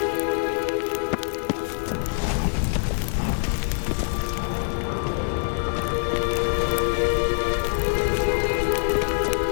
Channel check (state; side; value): silent; right; digital silence